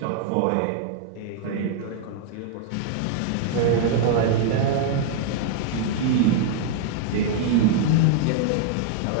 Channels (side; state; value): both; different; correlation -0.01